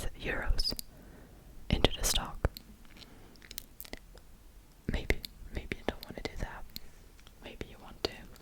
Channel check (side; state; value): both; identical; correlation 1.00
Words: euros into the stock. Maybe you don't want to do that. Maybe you want to.